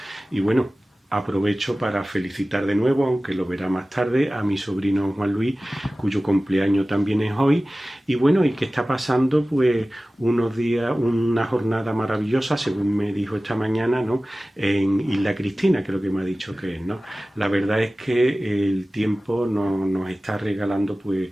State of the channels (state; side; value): normal; both; correlation 0.97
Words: Y bueno, aprovecho para felicitar de nuevo, aunque lo verá más tarde, a mi sobrino Juan Luis, cuyo cumpleaños también es hoy. Y bueno, y que está pasando pues unos días, una jornada maravillosa, según me dijo esta mañana, ¿no? En Isla Cristina, creo que me ha dicho que es, ¿no? La verdad es que el tiempo nos está regalando pues